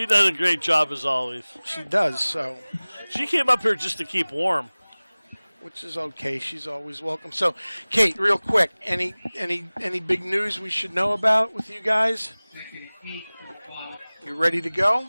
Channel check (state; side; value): inverted; both; correlation -1.00